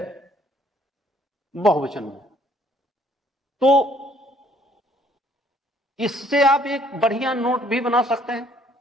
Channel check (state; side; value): normal; both; correlation 0.62